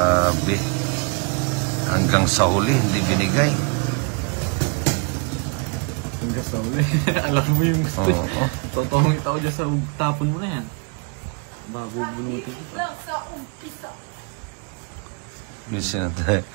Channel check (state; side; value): quieter; left; 34.8 dB